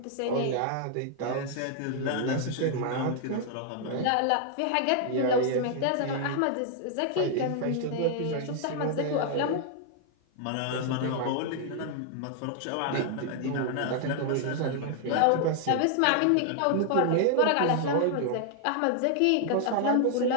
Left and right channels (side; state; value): both; different; correlation -0.01